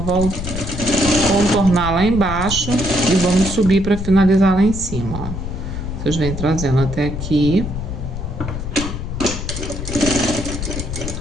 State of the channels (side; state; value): left; noise; rumble, 6 dB below the sound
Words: contornar lá embaixo e vamos subir para finalizar lá em cima, ó. Vocês vêm trazendo até aqui.